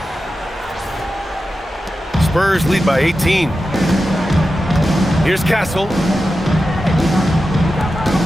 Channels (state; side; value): normal; both; correlation 0.92